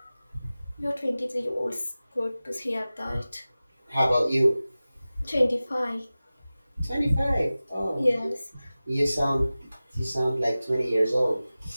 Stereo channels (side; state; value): both; inverted; correlation -0.97